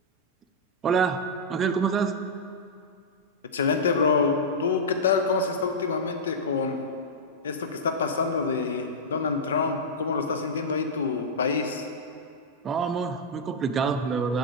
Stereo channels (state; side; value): normal; both; correlation -0.09